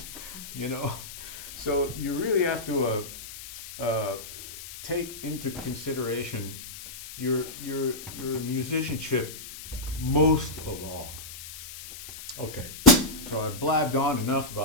So you really have to take into consideration your musicianship most of all. Okay, so I blabbed on enough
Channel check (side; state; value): left; noise; hiss, 13 dB below the sound